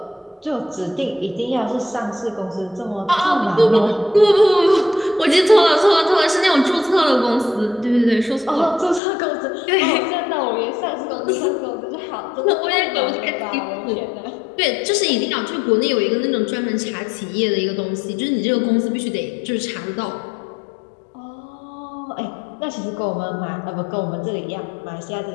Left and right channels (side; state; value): right; drops out; at 9.0 s